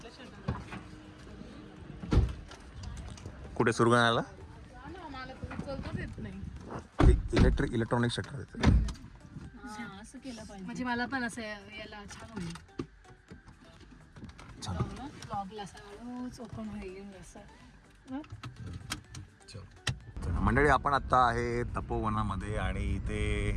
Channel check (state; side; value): identical; both; correlation 1.00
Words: शेतात कुठे सुरगाण्याला मला चलताच येत नाही. इलेक्ट्रॉनिक शटर येते. असं केलं पाहिजे. म्हणजे मला पण असं याला छान होईल. ब्लॉगला असं हळूच ओपन होईल असं. मंडळी आपण आता आहे तपोवनामध्ये आणि इथे